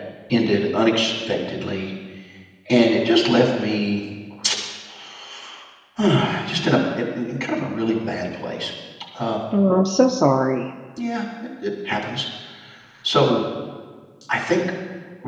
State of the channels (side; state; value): both; identical; correlation 1.00